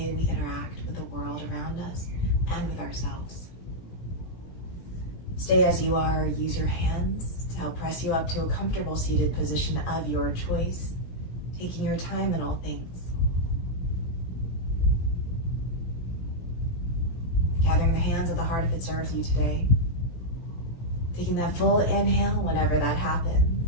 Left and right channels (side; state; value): right; late; 17 ms